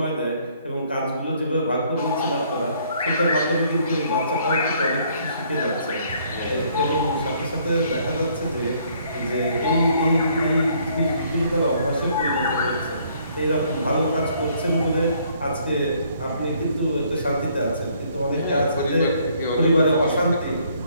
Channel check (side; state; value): both; inverted; correlation -0.64